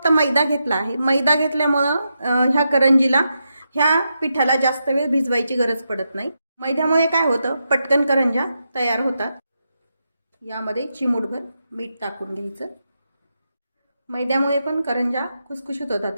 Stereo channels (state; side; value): inverted; both; correlation -0.85